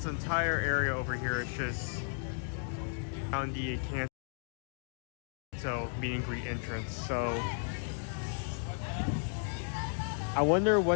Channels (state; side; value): silent; right; 55 dB below the other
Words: entire area over here is just on the Canto meet and greet entrance. So I wonder